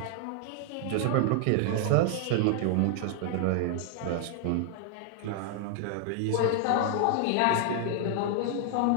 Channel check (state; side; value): different; both; correlation 0.00